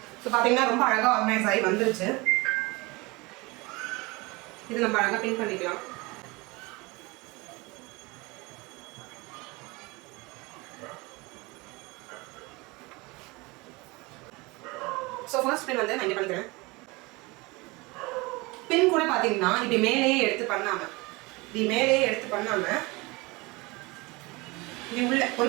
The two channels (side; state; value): left; quieter; 24.5 dB